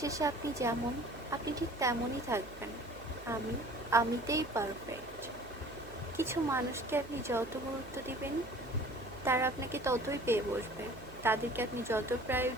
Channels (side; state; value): right; noise; hum, 19 dB below the sound